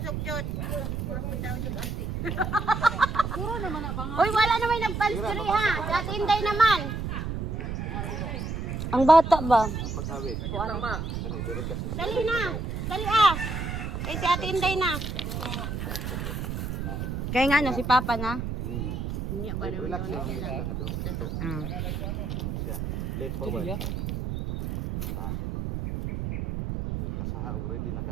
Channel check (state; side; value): noise; right; rumble, 4 dB below the sound